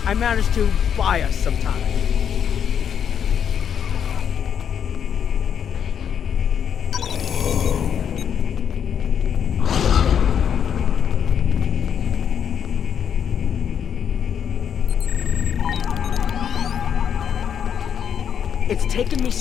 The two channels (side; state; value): right; quieter; 8.2 dB